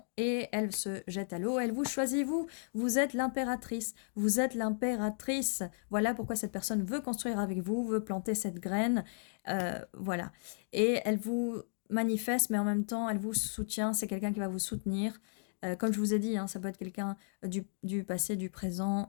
et elle se jette à l'eau, elle vous choisit, vous êtes l'impératrice, vous êtes l'impératrice. Voilà pourquoi cette personne veut construire avec vous, veut planter cette graine, voilà. Et elle vous manifeste, mais en même temps, elle vous soutient, c'est quelqu'un qui va vous soutenir. Comme je vous ai dit, hein, ça peut être quelqu'un du passé, du présent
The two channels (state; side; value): silent; right; digital silence